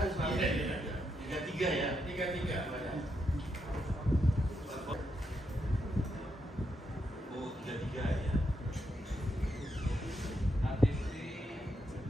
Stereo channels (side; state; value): both; normal; correlation 0.81